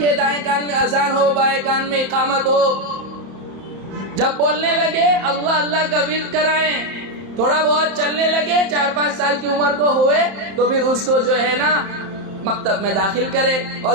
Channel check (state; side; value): late; left; 31 ms